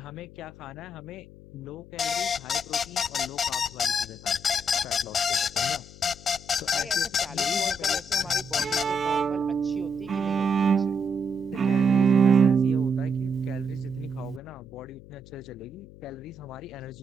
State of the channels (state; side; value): noise; left; hum, 19 dB below the sound